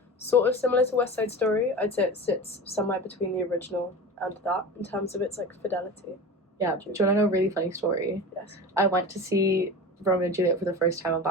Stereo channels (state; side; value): normal; both; correlation 0.31